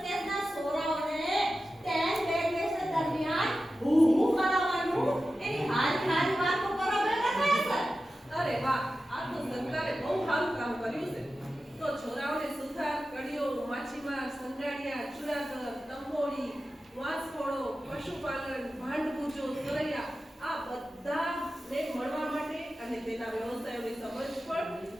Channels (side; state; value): both; normal; correlation 0.93